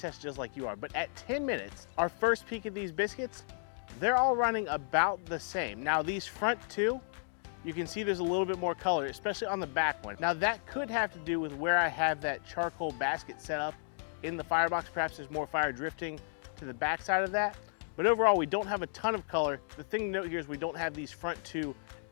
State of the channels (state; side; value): silent; right; digital silence